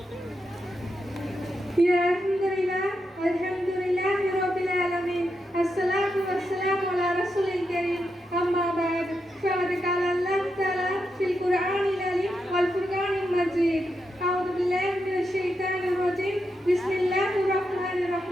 அல்ஹம்துலில்லாஹி ரப்பில் ஆலமீன். அஸ்ஸலாத்து வஸ்ஸலாமு அலா ரசூலில் கரீம். அம்மா பஅத். ஃபகத் கால அல்லாஹ் தஆலா ஃபில் குர்ஆனில் அலீம் வல் ஃபுர்கானில் மஜீத். அஊது பில்லாஹி மினஷ் ஷைத்தானிர் ரஜீம். பிஸ்மில்லாஹிர் ரஹ்மானிர்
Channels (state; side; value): normal; both; correlation 0.85